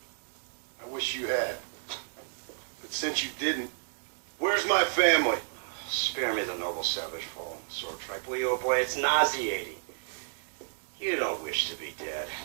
I wish you had. But since you didn't, where's my family? Spare me the noble savage fallen sword tribe, will you, oh boy? It's nauseating. You don't wish to be dead.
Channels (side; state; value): left; silent; digital silence